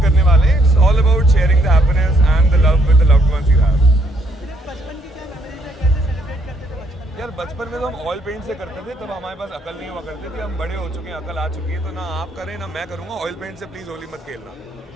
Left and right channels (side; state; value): both; normal; correlation 0.70